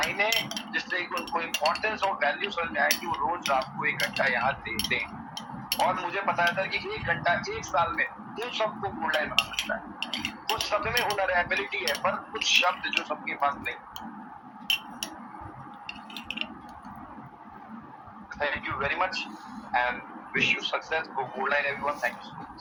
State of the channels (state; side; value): identical; both; correlation 1.00